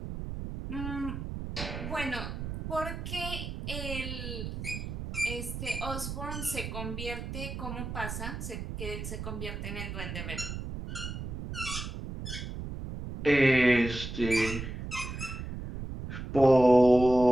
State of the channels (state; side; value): noise; right; rumble, 7 dB below the sound